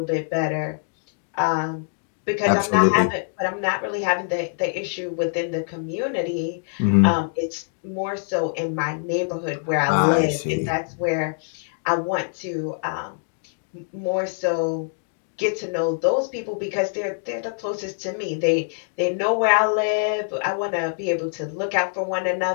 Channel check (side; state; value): right; silent; digital silence